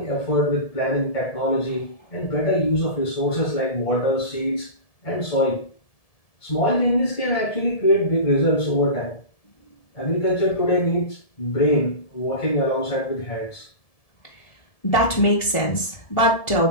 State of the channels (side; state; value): right; late; 1.7 ms